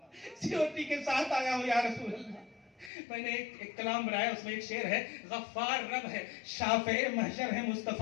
سیورٹی کے ساتھ آیا ہوں یا رسول اللہ. میں نے ایک کلام بنایا, اس میں ایک شعر ہے, غفار رب ہے شافع محشر ہے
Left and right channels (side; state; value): right; drops out; at 2.9 s